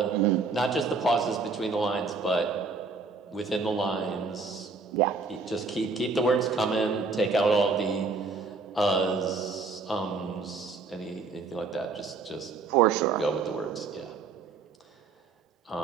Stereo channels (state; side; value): quieter; left; 4.3 dB